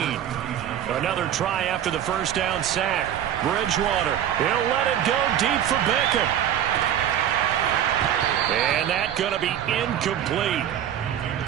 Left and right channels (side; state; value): left; quieter; 10.3 dB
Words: Another try after the first down sack. Bridgewater, he'll let it go deep for Beckham. And that's going to be incomplete.